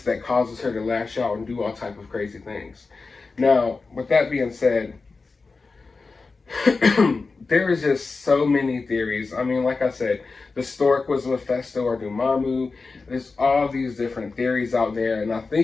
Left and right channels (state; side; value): quieter; right; 4.1 dB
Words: that causes her to lash out and do all type of crazy things. Now, with that being said, there is just so many theories. I mean, like I said, the stork was Mephisto or Dormammu. There's all these different theories out there, and I